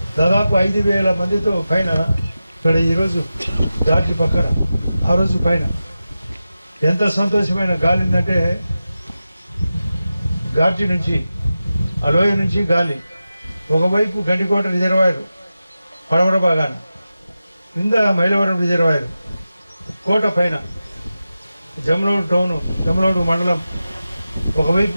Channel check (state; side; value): inverted; both; correlation -0.93